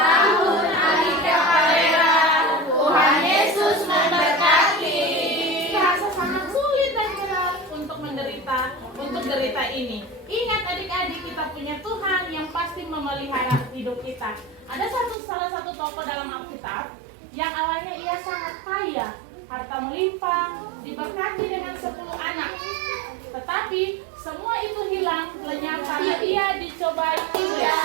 Tuhan Yesus memberkati. Rasa sangat sulit dan berat untuk derita ini. Ingat adik-adik, kita punya Tuhan yang pasti memelihara hidup kita. Ada salah satu tokoh dalam Alkitab yang awalnya ia sangat kaya, harta melimpah, diberkati dengan 10 anak. Tetapi semua itu hilang lenyap karena ia dicobai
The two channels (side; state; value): left; drops out; at 15.2 s